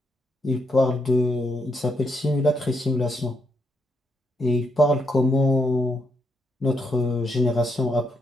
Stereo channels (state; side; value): normal; both; correlation 0.78